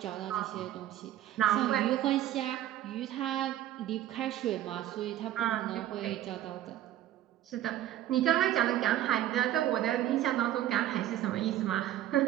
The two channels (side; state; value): left; quieter; 12.8 dB